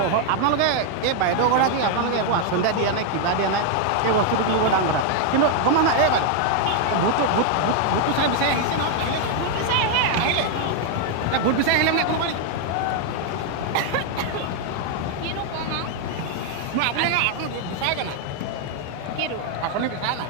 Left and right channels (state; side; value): different; both; correlation 0.00